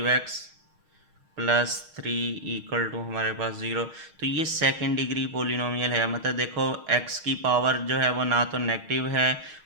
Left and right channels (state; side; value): late; left; 6.4 ms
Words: प्लस 3 इक्वल टू हमारे पास 0। तो ये सेकंड डिग्री पोलिनोमियल है। मतलब देखो x की पावर जो है वो ना तो नेगेटिव है